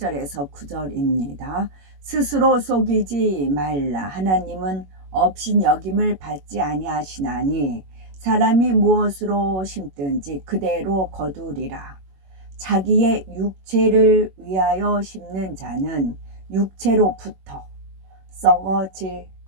9절입니다. 스스로 속이지 말라. 하나님은 업신여김을 받지 아니하시나니 사람이 무엇으로 심든지 그대로 거두리라. 자기의 육체를 위하여 심는 자는 육체로부터 썩어질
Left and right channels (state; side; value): late; left; 21 ms